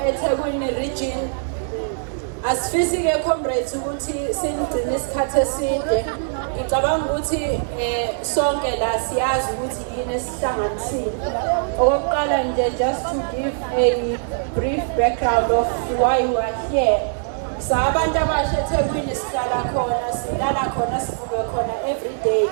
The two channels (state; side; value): silent; left; digital silence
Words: eThekwini region. Asifisi-ke comrades ukuthi sinigcine isikhathi eside. Ngicabanga ukuthi sonke la siyazi ukuthi yini esihlanganisile. Okokuqala nje, just to give a brief background of why we are here. Sabantu abasha eThekwini sihlala khona, silala khona, sivuke khona every day.